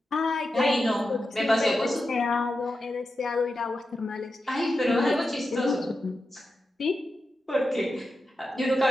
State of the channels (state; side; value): normal; both; correlation 0.90